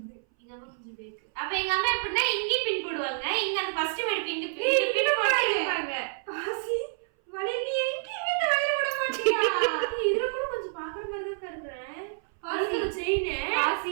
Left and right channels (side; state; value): left; silent; 59 dB below the other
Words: எங்க அம்மா கொஞ்சம் பேக்கு. அப்ப எங்க அம்மா எப்படின்னா இங்கி பின் போடுவாங்க, இங்க அந்த ஃபர்ஸ்ட் மேட் பின் பின் போடுவாங்க. பாசி வளைய நீ எங்கேயுமே இந்த வளையல போட மாட்டியா? இதுல கூட கொஞ்சம் பாக்குற மாதிரி தான் கருக்குறேன். பாசி செயின்,